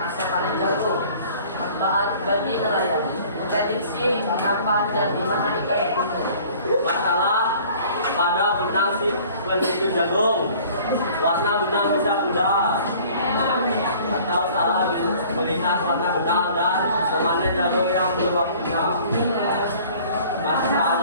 panen jagung. Manfaat bagi nelayan memprediksi kapan dan di mana ikan berkumpul. Masalah pada benang si penentu jagung, warna benang bisa pudar atau salah melihat warna benang dan memanen jagung yang berubah benang.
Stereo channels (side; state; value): both; inverted; correlation -0.50